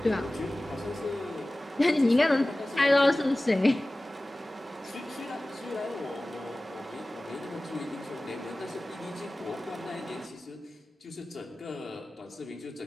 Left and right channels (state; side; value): normal; both; correlation 0.97